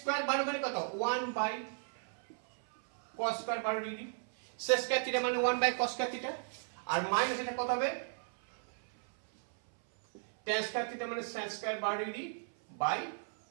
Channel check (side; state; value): left; silent; 54 dB below the other